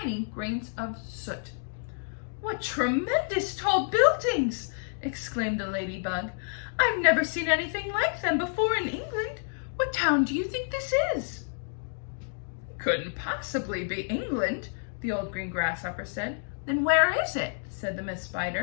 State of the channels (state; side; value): silent; right; digital silence